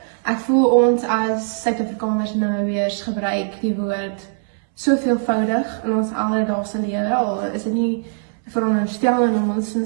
Ek voel ons as Suid-Afrikaners en Namibiërs gebruik die woord so veelvoudig in ons alledaagse lewe, al is dit nie veronderstelling om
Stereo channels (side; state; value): left; silent; 65 dB below the other